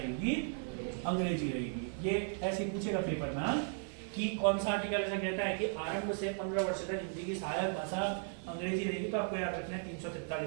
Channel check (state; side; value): silent; left; 54 dB below the other